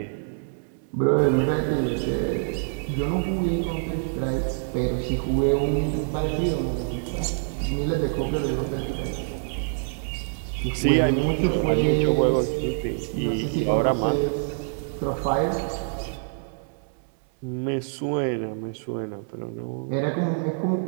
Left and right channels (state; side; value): silent; left; 61 dB below the other